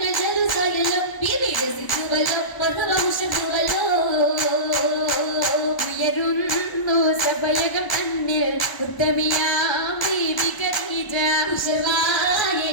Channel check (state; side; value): late; right; 1.0 ms